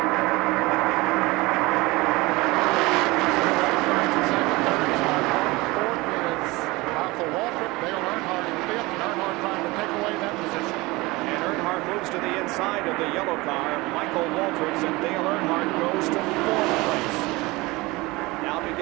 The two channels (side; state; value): left; quieter; 22.2 dB